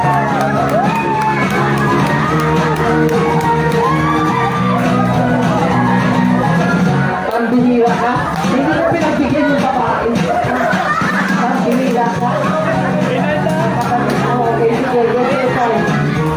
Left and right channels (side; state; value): both; identical; correlation 1.00